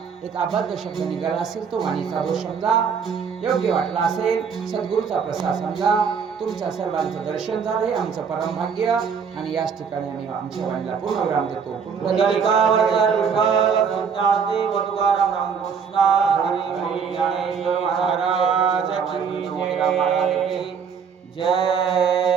एक अबद्ध शब्द निघाला असेल तो वाणीचा दोष समजा, योग्य वाटला असेल सद्गुरूचा प्रसाद समजा. तुमच्या सर्वांचं दर्शन झालं हे आमचं परम भाग्य. आणि याच ठिकाणी आम्ही आमच्या वाणीला पूर्ण विराम देतो.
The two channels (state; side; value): quieter; left; 6.4 dB